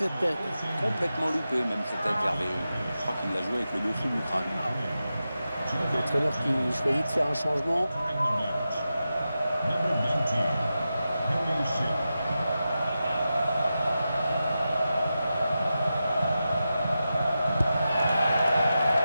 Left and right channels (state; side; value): inverted; both; correlation -0.91